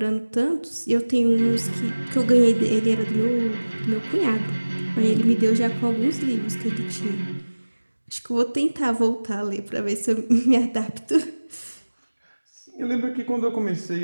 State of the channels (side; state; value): both; inverted; correlation -1.00